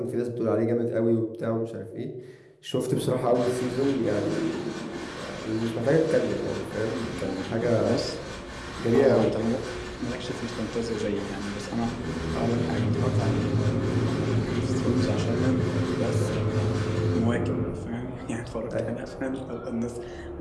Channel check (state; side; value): identical; both; correlation 1.00